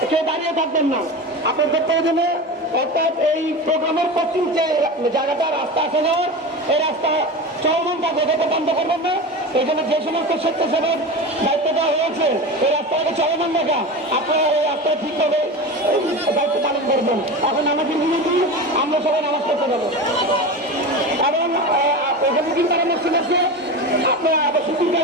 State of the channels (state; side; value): normal; both; correlation 0.27